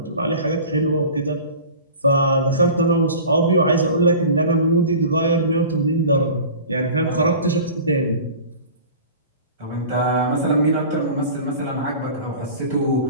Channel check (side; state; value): both; inverted; correlation -0.40